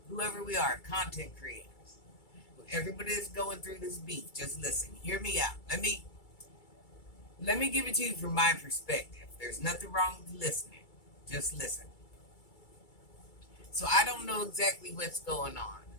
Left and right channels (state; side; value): late; right; 2.3 ms